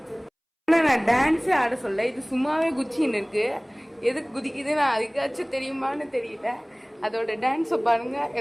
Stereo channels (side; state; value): both; identical; correlation 1.00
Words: நான் டான்ஸே ஆட சொல்ல, இது சும்மாவே குச்சின்னு இருக்கு. எதுக்கு குதிக்குதுன்னு அதுக்காச்சும் தெரியுமான்னு தெரியல. அதோட டான்ஸை பாருங்க,